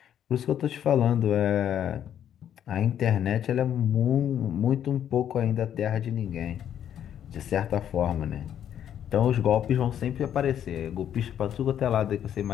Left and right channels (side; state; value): right; quieter; 9.9 dB